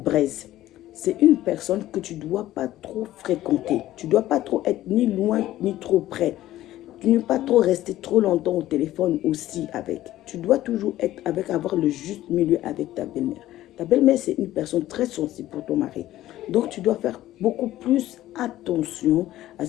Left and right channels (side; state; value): right; quieter; 14.5 dB